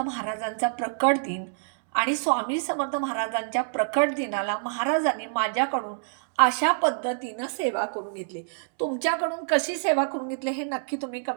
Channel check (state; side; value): silent; left; 60 dB below the other